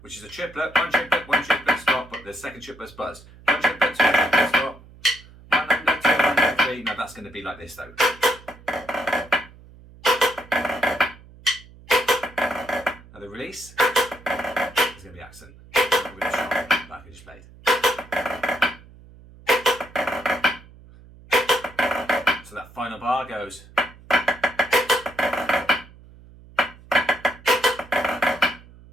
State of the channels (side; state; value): right; noise; hum, 22 dB below the sound